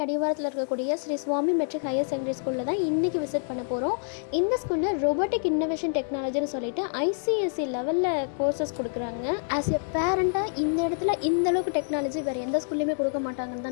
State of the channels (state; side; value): silent; right; digital silence